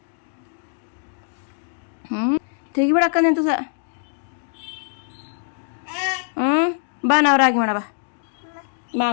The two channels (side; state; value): right; silent; digital silence